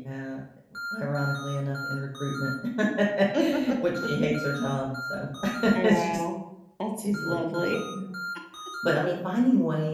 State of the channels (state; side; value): identical; both; correlation 1.00